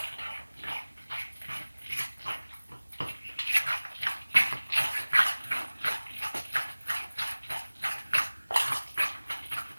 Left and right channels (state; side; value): inverted; both; correlation -1.00